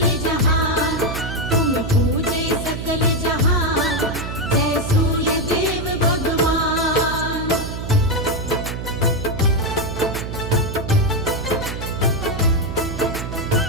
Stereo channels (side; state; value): right; noise; hum, 6 dB below the sound